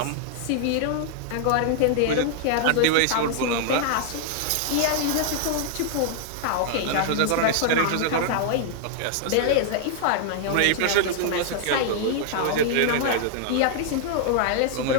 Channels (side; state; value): both; different; correlation 0.00